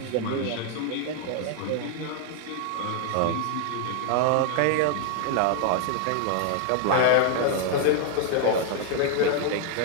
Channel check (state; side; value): different; both; correlation 0.00